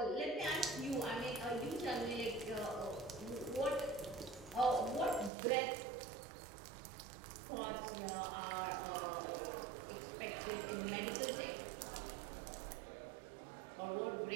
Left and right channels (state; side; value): drops out; left; at 5.3 s